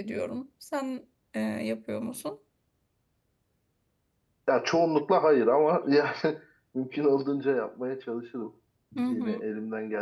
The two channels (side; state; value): both; identical; correlation 1.00